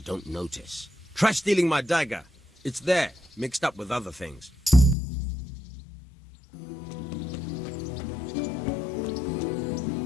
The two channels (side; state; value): right; drops out; at 5.0 s